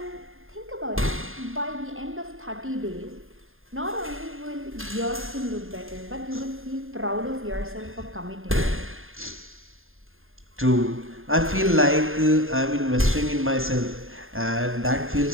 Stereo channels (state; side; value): late; left; 0.60 ms